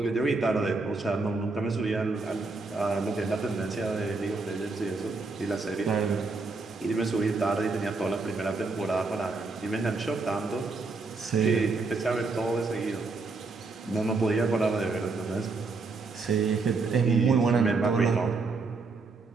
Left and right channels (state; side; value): quieter; left; 3.9 dB